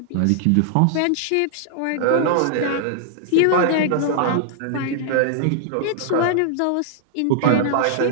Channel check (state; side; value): different; both; correlation -0.01